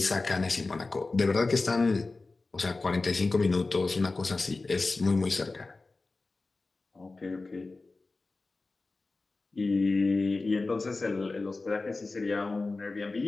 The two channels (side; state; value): right; quieter; 3.5 dB